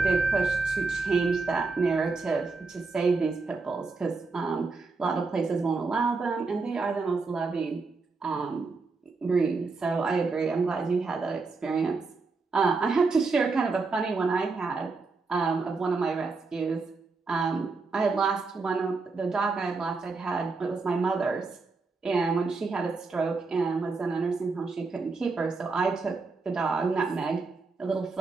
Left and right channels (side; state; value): left; quieter; 4.1 dB